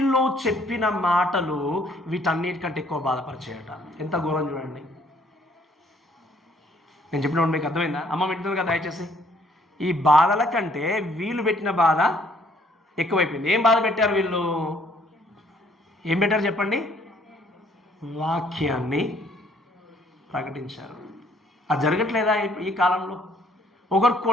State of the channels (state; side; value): normal; both; correlation 0.63